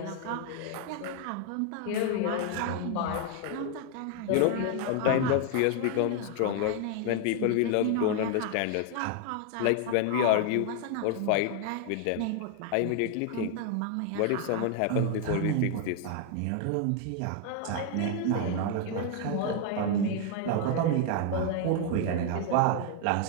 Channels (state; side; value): different; both; correlation 0.00